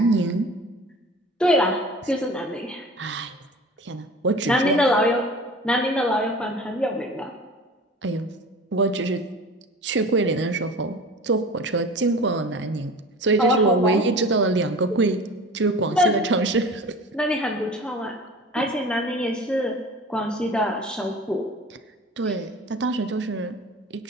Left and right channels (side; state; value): both; normal; correlation 0.39